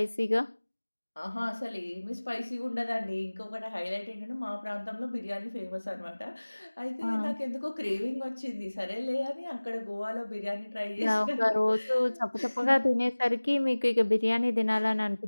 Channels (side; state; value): both; inverted; correlation -1.00